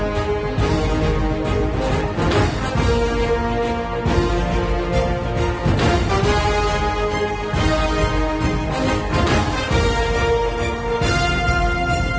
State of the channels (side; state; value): both; identical; correlation 1.00